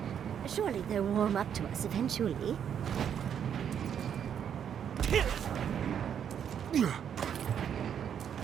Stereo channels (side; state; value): left; quieter; 8.6 dB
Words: Surely they'll warm up to us eventually.